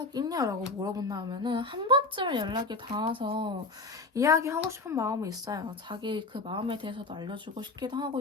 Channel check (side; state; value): right; quieter; 3.3 dB